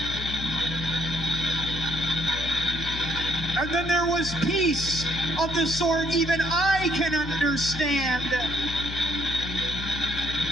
And then there was peace of the sort even I can understand.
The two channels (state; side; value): noise; left; hum, 8 dB below the sound